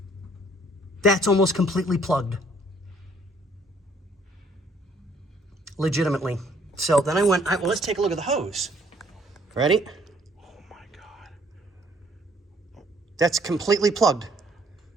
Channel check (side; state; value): both; normal; correlation 0.62